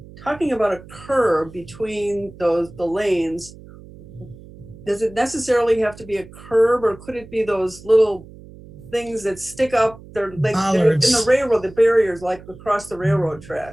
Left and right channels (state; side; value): noise; right; hum, 19 dB below the sound